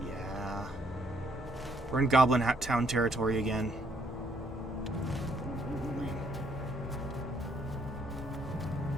Yeah. We're in Goblin Town territory again.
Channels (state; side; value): normal; both; correlation 0.69